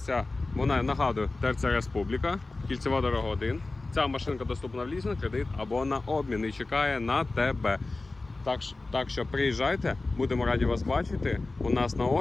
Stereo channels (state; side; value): quieter; right; 3.3 dB